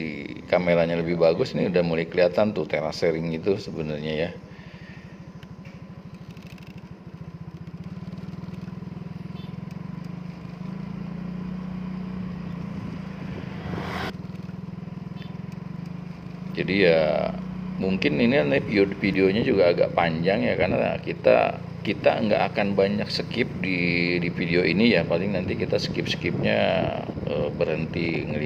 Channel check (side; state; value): both; identical; correlation 1.00